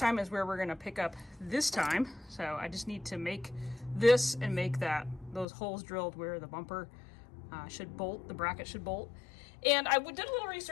is where we're going to pick up this time. So I just need to make this and make those holes drilled where the bumper should bolt, the bracket should bolt. And I did a little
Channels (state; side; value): drops out; right; at 5.5 s